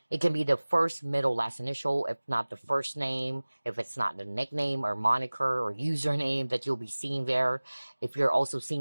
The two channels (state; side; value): inverted; both; correlation -1.00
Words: it can be the first, middle, last initial, if not the first name, if it's not the nickname or moniker or username that you'll be seeing there. If you're also